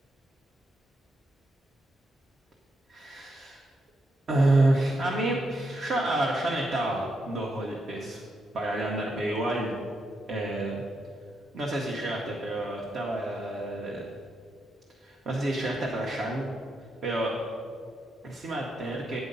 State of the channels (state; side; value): normal; both; correlation 0.82